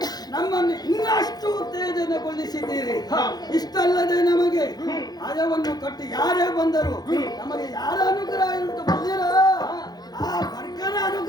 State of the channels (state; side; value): late; right; 0.19 ms